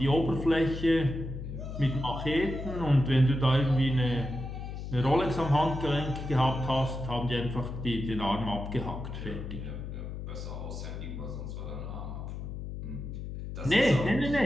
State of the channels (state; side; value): noise; left; hum, 7 dB below the sound